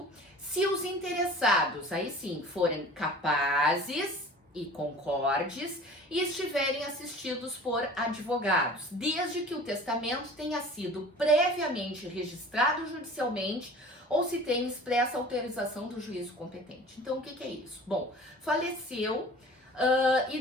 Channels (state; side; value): normal; both; correlation 0.43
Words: se os interessados, aí sim, forem capazes e concordes e estiverem assistidos por advogados, desde que o testamento tenha sido previamente registrado judicialmente ou se tenha expressa autorização do juízo competente. Então, o que é isso? Bom, faleceu e